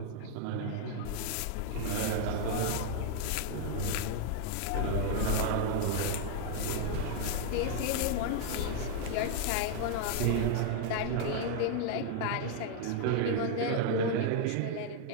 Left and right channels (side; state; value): both; different; correlation 0.00